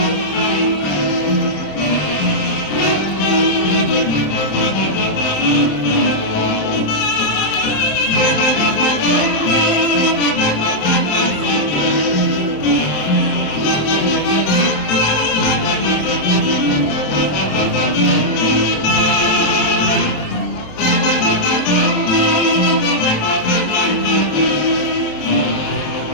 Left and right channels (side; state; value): right; late; 27 ms